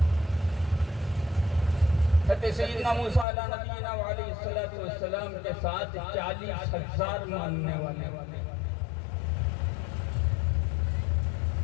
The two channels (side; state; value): right; drops out; at 3.2 s